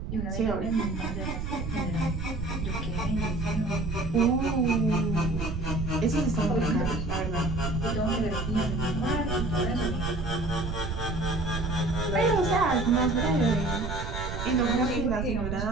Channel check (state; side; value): noise; right; rumble, 5 dB below the sound